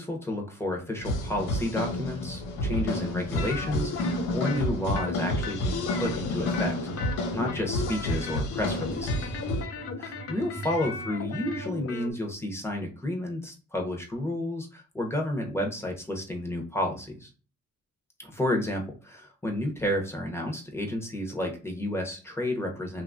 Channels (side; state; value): both; normal; correlation 0.51